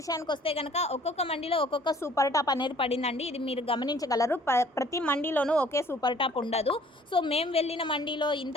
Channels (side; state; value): both; normal; correlation 0.55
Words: వస్తే కనుక ఒక్కొక్క మండీలో ఒక్కొక్క సూపర్ టాప్ అనేది పడిందండి. ఇది మీరు గమనించగలరు. ప్రతి మండీలోనూ ఒకే సూపర్ టాప్ ఉండదు. సో మేము వెళ్ళిన మండీలో ఇంత